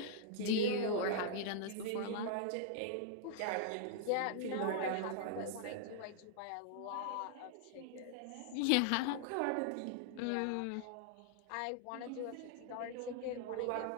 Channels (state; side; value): different; both; correlation -0.01